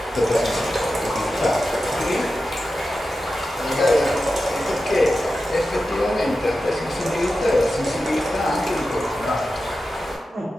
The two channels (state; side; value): normal; both; correlation 0.92